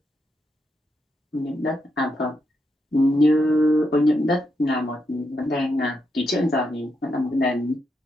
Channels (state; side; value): normal; both; correlation 0.82